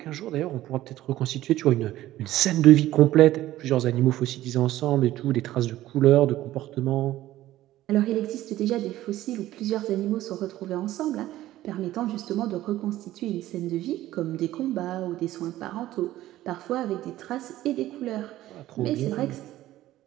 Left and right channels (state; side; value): quieter; left; 14.8 dB